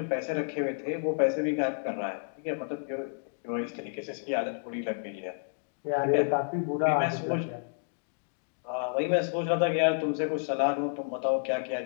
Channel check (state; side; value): silent; right; digital silence